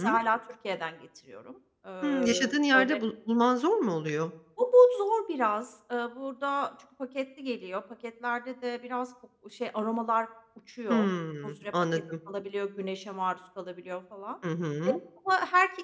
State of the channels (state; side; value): identical; both; correlation 1.00